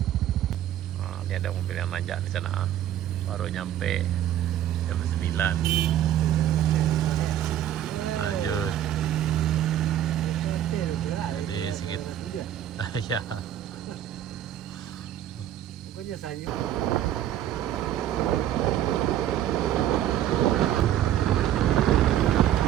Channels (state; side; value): quieter; left; 11.5 dB